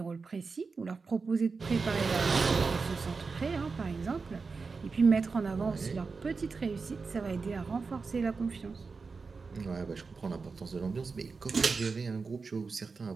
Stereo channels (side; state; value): left; quieter; 4.6 dB